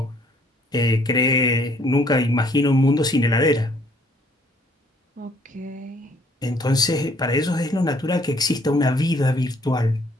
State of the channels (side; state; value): both; normal; correlation 0.62